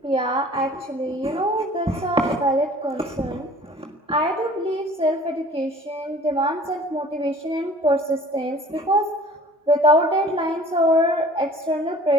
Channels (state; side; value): normal; both; correlation 0.48